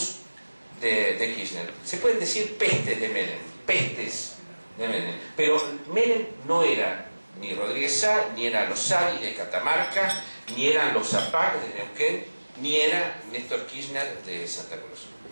de Kirchner. Se pueden decir pestes de Menem, pero Menem no era ni Rodríguez Sá, ni era los Sadi de Catamarca, ni eran los Zapac de Neuquén, ni era Néstor Kirchner de Santa Cruz.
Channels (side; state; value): both; inverted; correlation -1.00